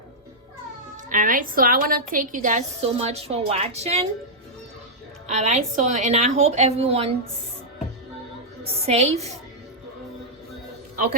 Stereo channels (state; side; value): normal; both; correlation -0.07